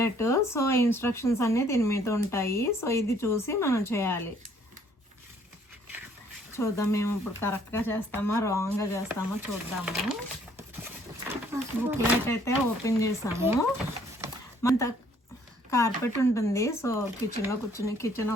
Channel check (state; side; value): normal; both; correlation 0.62